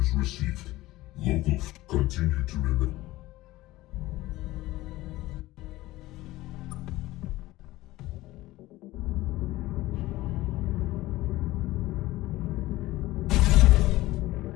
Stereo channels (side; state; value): right; quieter; 17.7 dB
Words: received. Local. Continue to remain.